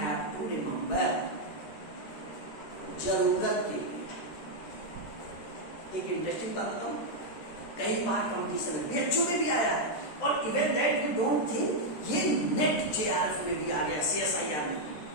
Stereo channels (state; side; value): late; right; 13 ms